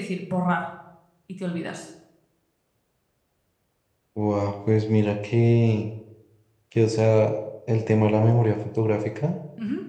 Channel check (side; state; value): both; identical; correlation 1.00